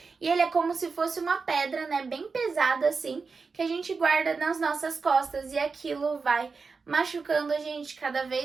E ele é como se fosse uma pedra, né, bem pesada assim, que a gente guarda nas nossas costas e aquilo vai machucando a gente cada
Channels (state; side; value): quieter; left; 4.7 dB